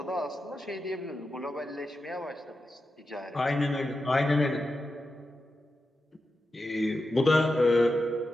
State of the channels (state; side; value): normal; both; correlation 0.90